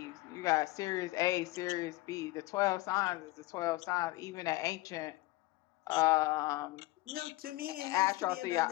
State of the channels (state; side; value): quieter; right; 19.7 dB